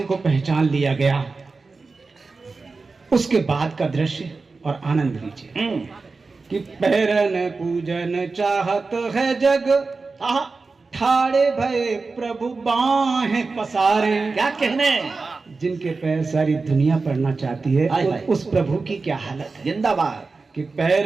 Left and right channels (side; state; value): left; quieter; 4.1 dB